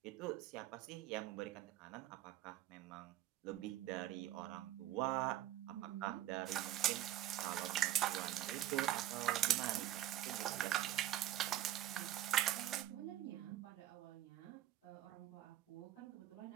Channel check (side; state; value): left; quieter; 12.9 dB